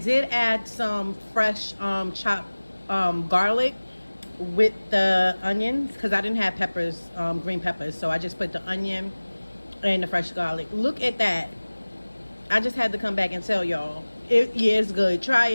add some fresh chopped garlic with the onions because I didn't have peppers, green peppers. So I just put the onion and the fresh garlic. Look at that. I just had to come back and tell y'all. Yeah, it's good. Try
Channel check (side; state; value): both; inverted; correlation -1.00